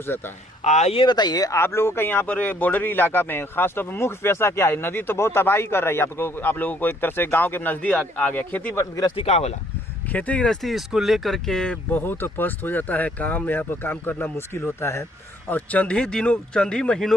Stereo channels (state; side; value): normal; both; correlation 0.64